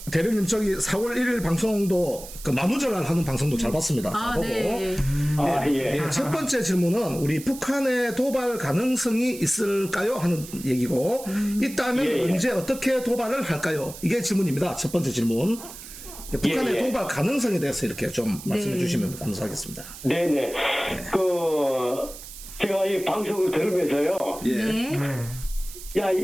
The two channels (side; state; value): right; noise; hiss, 14 dB below the sound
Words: 대령님 저기 4월 1일 방송도 그 만우절날 하는 방송도 잘 봤습니다. 잘 보고. 네. 예, 첫 번째 질문은 우리 북한의 도발 가능성이 있을까요? 하는 얘기고 있다면 언제 어떻게 도발을 할까요? 이게 질문입니다. 첫 번째 질문. 북한의 도발 가능성에 대해서 이렇게 좀 말씀해 주시면 감사하겠습니다. 네네. 제가 이 방송을 들으면서요. 예. 네.